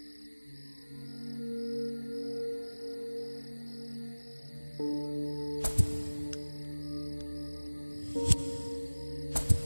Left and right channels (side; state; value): both; inverted; correlation -1.00